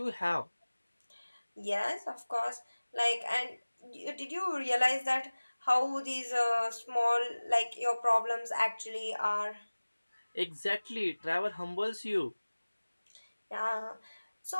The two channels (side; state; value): both; inverted; correlation -1.00